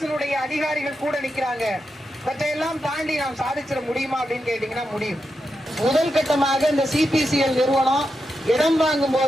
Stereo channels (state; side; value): normal; both; correlation 0.87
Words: அதிகாரிகள் கூட நிக்கிறாங்க, இவற்றையெல்லாம் தாண்டி நாம் சாதிச்சிட முடியுமா அப்படின்னு கேட்டீங்கன்னா முடியும். முதல் கட்டமாக இந்த சிபிசிஎல் நிறுவனம் இடம் வாங்கும்